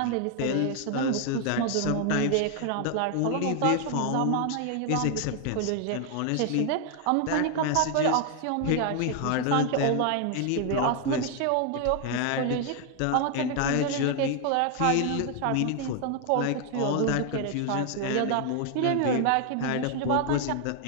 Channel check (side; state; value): both; different; correlation 0.00